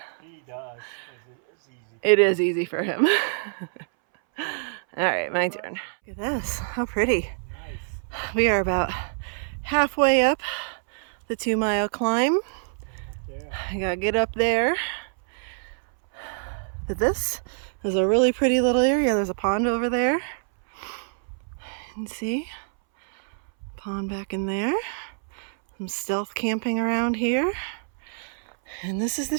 He does. It's easy. It is easy for him. All right, my turn. Look at this, how pretty. Nice. We are about halfway up the 2 mile climb. Yeah. I gotta get up there. But this is a really pretty little area. There's a pond over there. You can see pond back in there. Some stealth camping around here. And this is the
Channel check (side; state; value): left; silent; 61 dB below the other